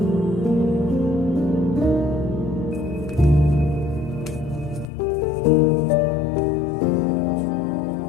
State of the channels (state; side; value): drops out; right; at 4.9 s